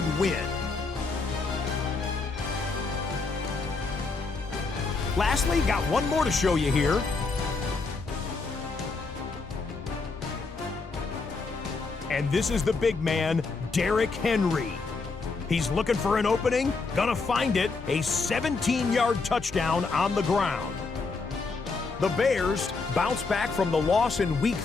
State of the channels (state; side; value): quieter; right; 4.2 dB